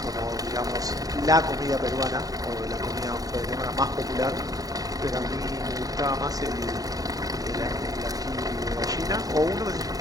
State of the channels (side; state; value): left; late; 0.18 ms